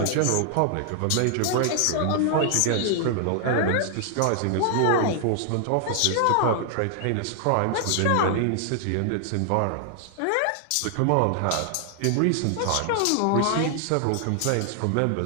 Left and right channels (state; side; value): different; both; correlation 0.00